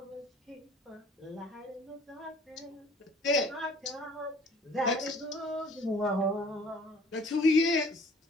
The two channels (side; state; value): both; normal; correlation 0.53